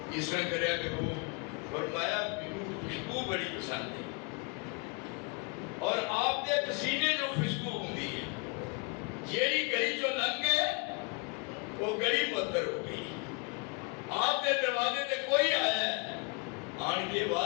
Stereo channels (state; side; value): quieter; right; 32.5 dB